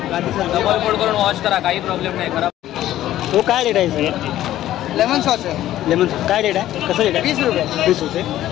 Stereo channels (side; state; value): right; quieter; 13.4 dB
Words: डबल कोट करून वॉश करा, काही प्रॉब्लेम नाही. खराब तो काय रेट आहे सर? लेमन सॉस आहे लेमन काय रेट आहे? कसं रेट आहे? 20 रुपये. 20 रुपये.